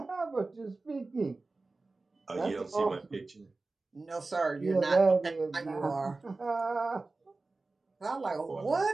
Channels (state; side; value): quieter; left; 3.5 dB